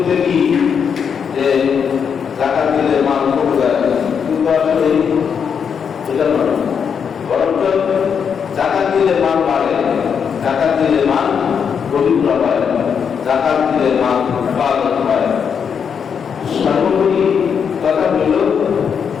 কি যে জাকাত দিলে মাল কমে যায়, কিন্তু আসলে এটা নয়, বরঞ্চ জাকাত দিলে মাল বাড়ে, জাকাত দিলে মাল পবিত্র হয়, জাকাত দিলে মাল হেফাজত হয়। সর্বোপরি কথা হল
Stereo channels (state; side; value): quieter; right; 7.0 dB